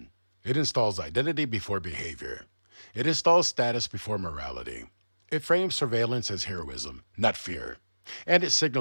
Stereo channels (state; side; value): inverted; both; correlation -1.00